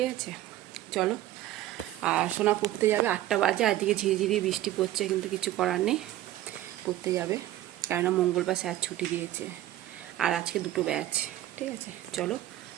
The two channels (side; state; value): left; quieter; 14.3 dB